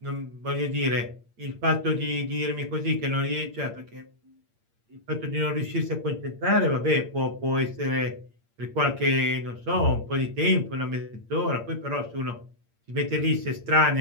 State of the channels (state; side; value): late; left; 8.7 ms